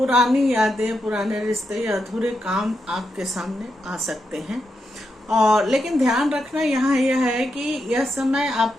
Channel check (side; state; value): both; normal; correlation 0.84